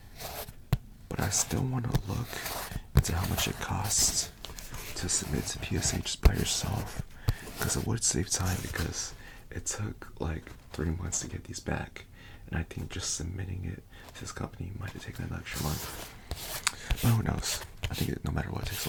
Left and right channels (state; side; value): identical; both; correlation 1.00